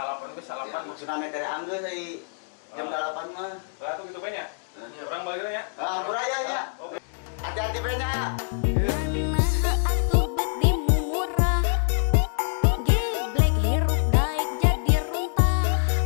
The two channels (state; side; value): silent; right; digital silence